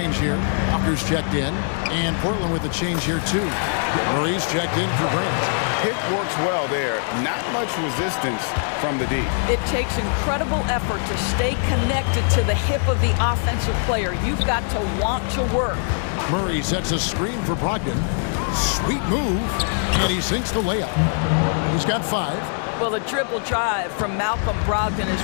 here. Walker's checked in. And Portland with a change here, too. Murray's checked in for Grant. Pick works well there. Not much resistance from the D. It takes incredible effort to stay connected to the hip of the offensive player. You've got to want to work. Murray sets a screen for Brogdon. Sweet move. And he sinks the layup. He's got 5. Well, the dribble drive from Malcolm Brogdon is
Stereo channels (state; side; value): silent; right; 62 dB below the other